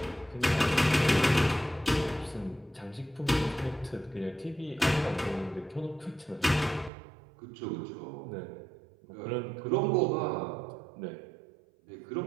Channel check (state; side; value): drops out; left; at 6.9 s